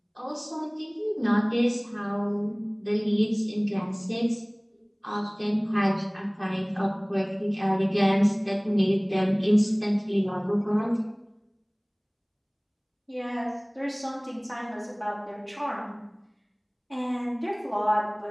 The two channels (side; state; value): both; identical; correlation 1.00